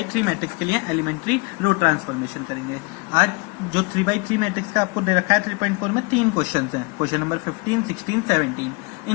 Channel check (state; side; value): quieter; right; 28.7 dB